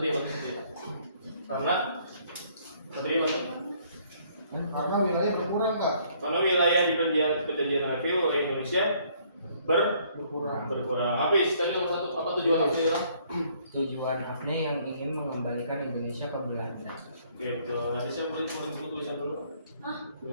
Karena Satria bantu. Karena wilayah berkurang Kak. Karena wilayah di perjanjian Redfield oleh Indonesia Berkurang. berkurang. Apa tadi nomor satu? Apa tujuan apa ya? Tujuan AFNE yang ingin mengembalikan Indonesia ke Belanda. Gitu. Nanti saya boleh buku tulisan dulu. Hah?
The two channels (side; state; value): both; inverted; correlation -0.63